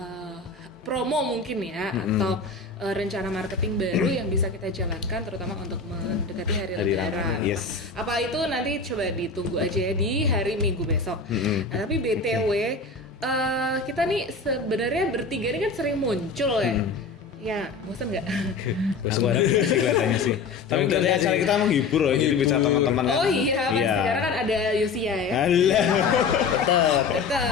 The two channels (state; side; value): quieter; right; 4.4 dB